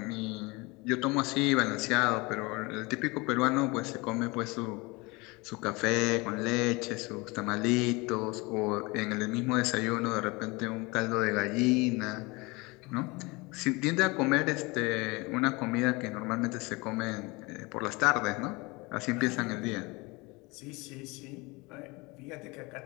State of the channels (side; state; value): right; quieter; 25.2 dB